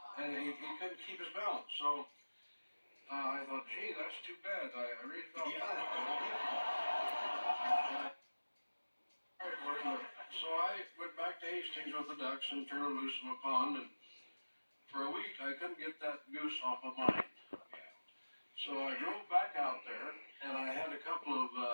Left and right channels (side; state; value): both; inverted; correlation -1.00